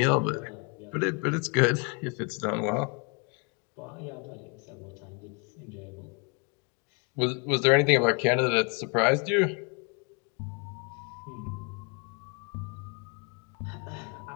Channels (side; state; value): right; quieter; 33.3 dB